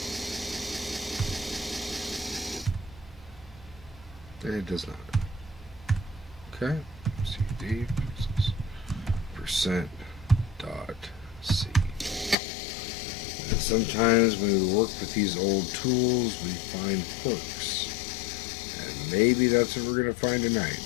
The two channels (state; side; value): drops out; right; at 12.4 s